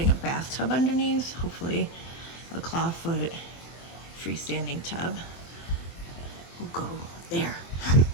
a bathtub underneath, hopefully a clawfoot freestanding tub will go there.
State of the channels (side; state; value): right; late; 24 ms